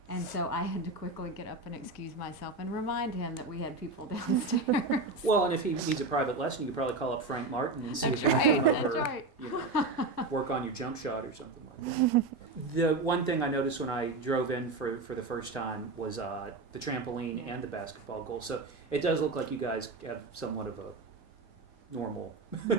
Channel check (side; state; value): left; quieter; 3.4 dB